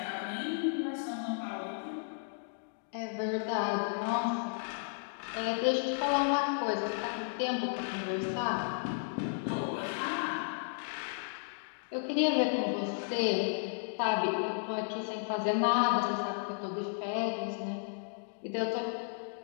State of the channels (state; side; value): silent; right; digital silence